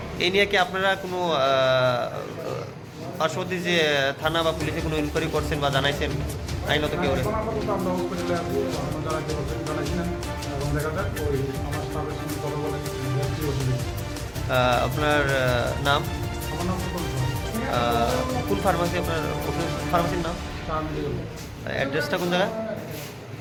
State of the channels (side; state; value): both; identical; correlation 1.00